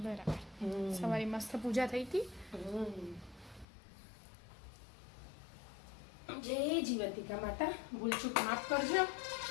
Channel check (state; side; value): drops out; right; at 3.7 s